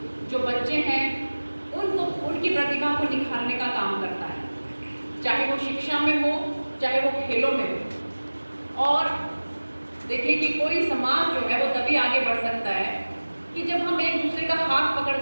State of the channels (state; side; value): inverted; both; correlation -1.00